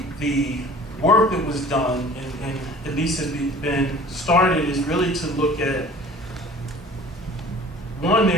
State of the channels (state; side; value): normal; both; correlation 0.46